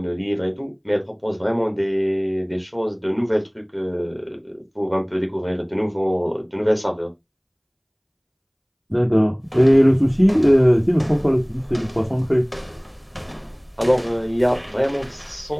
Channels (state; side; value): identical; both; correlation 1.00